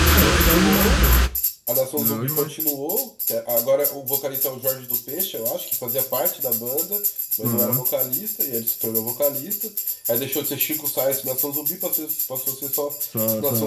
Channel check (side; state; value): both; identical; correlation 1.00